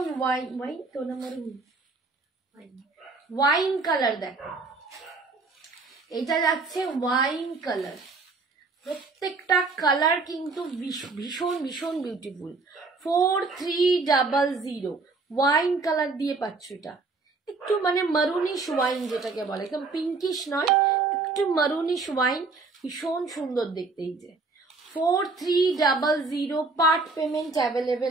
ওয়াইন, ওয়াইন তো না মারুন, ওয়াইন কালার দেখো, এটা যাচ্ছে ওয়াইন কালার। প্রত্যেকটা কালার কিন্তু ভীষণ ভীষণ বিউটিফুল। 4300 ওয়াইন কালার দিয়ে পাচ্ছ। এটা একটু মানে মারুনিশ ওয়াইন যেটাকে বলে, একদম পিঙ্কিশ নয়, একটু মারুনিশ ওয়াইন, ভীষণ সুন্দর দেখতে। এই যে 4300, পার্ট পেমেন্ট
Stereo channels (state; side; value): quieter; left; 3.9 dB